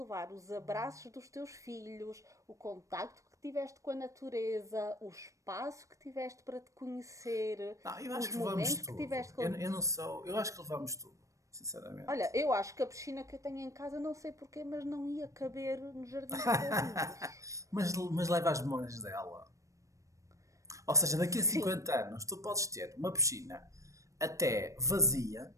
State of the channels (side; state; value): left; late; 0.15 ms